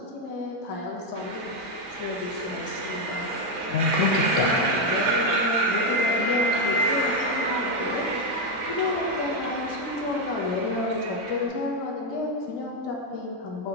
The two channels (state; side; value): late; right; 2.2 ms